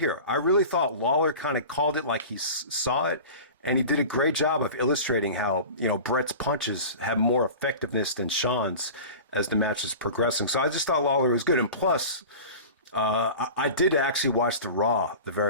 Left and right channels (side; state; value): both; inverted; correlation -0.36